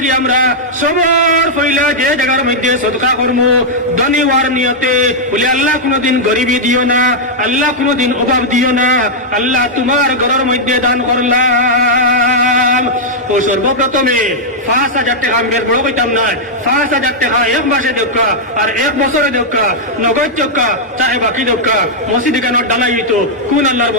আমরা সবার পয়লা যে জায়গার মধ্যে সদকা করবো ধনী হওয়ার নিয়তে বলে আল্লাহ কোনোদিন গরিবী দিও না আল্লাহ কোনোদিন অভাব দিও না আল্লাহ তোমার ঘরের মধ্যে দান করলাম ও সর্বপ্রথমে 5,000 টাকা আমি বড় কইতাম না 5,000 টাকা এক মাসে দেখা আর এক বছরে দেখা নগদ টাকা চাহে বাকি দেখা মসজিদ কেন ডালাই হইতো কোন আল্লাহর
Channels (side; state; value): both; normal; correlation -0.06